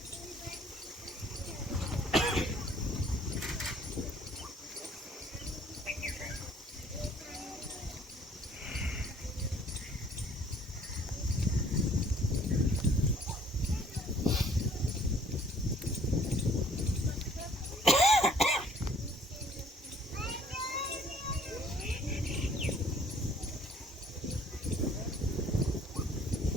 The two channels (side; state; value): both; normal; correlation 0.58